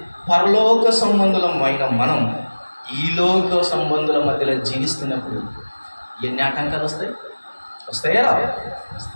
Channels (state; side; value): inverted; both; correlation -1.00